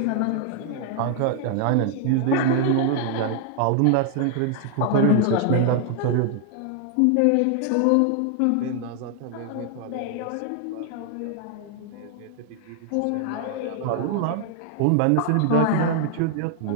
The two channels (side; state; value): both; different; correlation 0.00